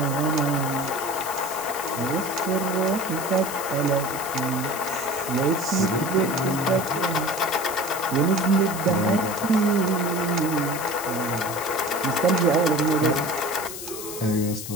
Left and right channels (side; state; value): left; noise; hiss, 9 dB below the sound